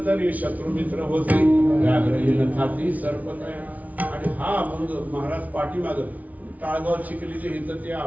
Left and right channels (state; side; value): late; left; 0.072 ms